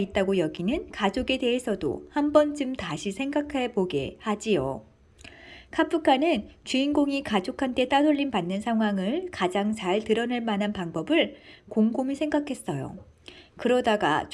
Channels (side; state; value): both; identical; correlation 1.00